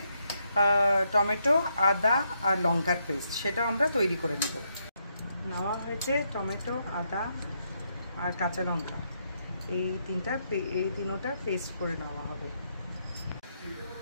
টমেটো, আদা আর লঙ্কার পেস্ট, সেটাও আমরা তৈরি করে নেব। নেওয়া হয়েছে টমেটো, আদা আর কাঁচা লঙ্কা, এই তিনোটা পেস্ট করে নেওয়া হবে।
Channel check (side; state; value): both; inverted; correlation -0.78